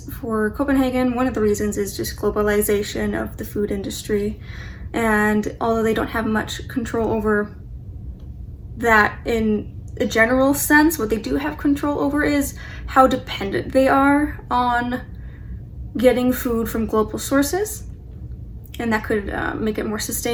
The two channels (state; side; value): identical; both; correlation 1.00